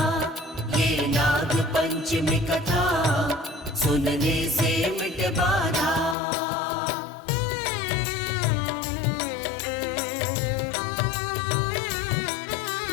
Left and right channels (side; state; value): right; drops out; at 6.2 s